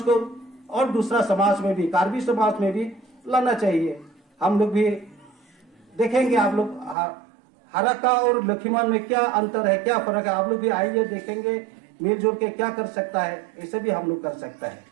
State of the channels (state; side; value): drops out; left; at 7.0 s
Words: और दूसरा समाज में भी, कार्बी समाज में भी लाना चाहिए। हम लोग भी देखेंगे, आप लोग हराका और लखीमन में क्या अंतर है, क्या फर्क है, आप लोग भी आइए देखेंगे, मिलजुल के क्या कर सकता है, ऐसे भी हम लोग कर सकता है,